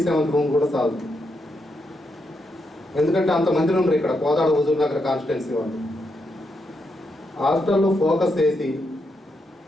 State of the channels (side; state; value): both; normal; correlation 0.82